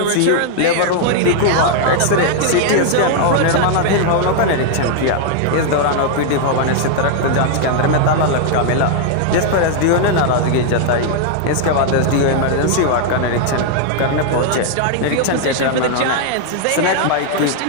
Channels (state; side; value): different; both; correlation 0.00